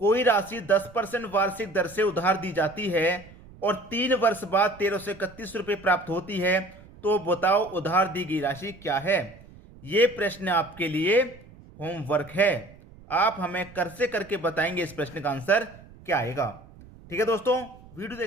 राशि 10% वार्षिक दर से उधार दी जाती है और 3 वर्ष बाद 1331 रुपए प्राप्त होती है, तो बताओ उधार दी गई राशि क्या है? यह प्रश्न आपके लिए होमवर्क है। आप हमें कर से करके बताएंगे इस प्रश्न का आंसर क्या आएगा। ठीक है दोस्तों, वीडियो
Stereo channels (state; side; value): noise; right; rumble, 21 dB below the sound